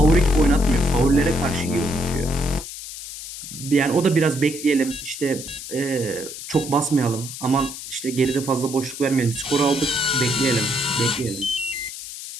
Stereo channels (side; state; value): left; noise; hiss, 11 dB below the sound